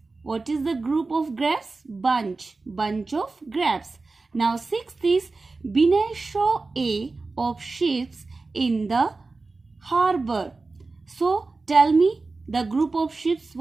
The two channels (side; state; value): left; quieter; 3.7 dB